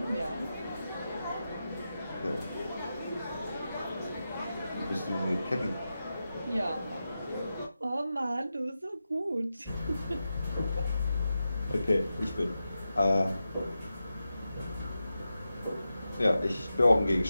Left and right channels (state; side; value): inverted; both; correlation -0.91